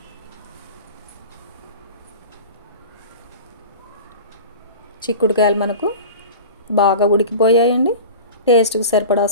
చిక్కుడుకాయలు మనకు బాగా ఉడికిపోయాయండి. టేస్ట్కి సరిపడా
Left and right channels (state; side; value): inverted; both; correlation -0.35